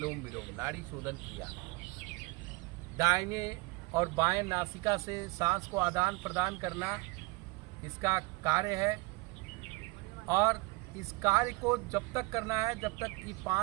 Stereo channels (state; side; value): quieter; left; 25.4 dB